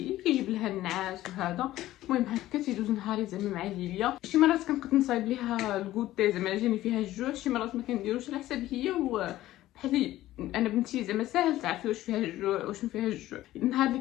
كيجيب لها النعاس وهذا. المهم هكا تيدوز نهاري زعما مع ليليا. شي مرات كنقد نصايب ليها الكوتي زعما جاني فيها الجوع، شي مرات ما كنديروش على حساب هي بحال انا بنتي زعما ساهل تعرفي واش فيها الجوع واش ما فيها الجوع. النهار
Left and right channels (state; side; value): quieter; right; 15.1 dB